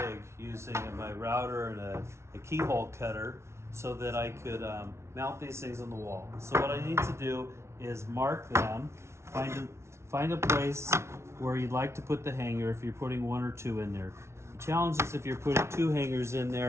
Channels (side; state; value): left; late; 0.13 ms